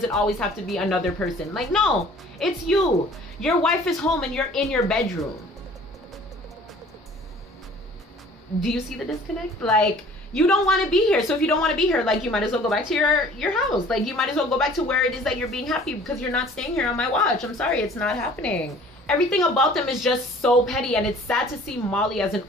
it always have to be another person? Like, no, it's you. Your wife is home and you're in your bedroom. Do you see the disconnect? Like, you don't want to be here. So if you don't want to be here, like, you might as well go back to your house. Like, you might as well go back to where it is that you're being happy, because you're not staying here on my watch. I'm sorry, it's not happening. Everything about them is just so petty, and it's sad to see Molly as an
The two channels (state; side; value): normal; both; correlation 0.51